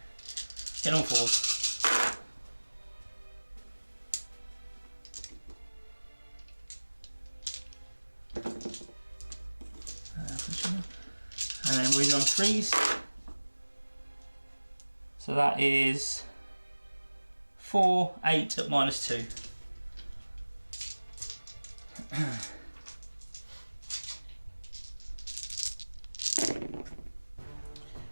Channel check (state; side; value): inverted; both; correlation -1.00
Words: Get on 4s. And then wounded on 3s. So that is 4, 8 at minus 2.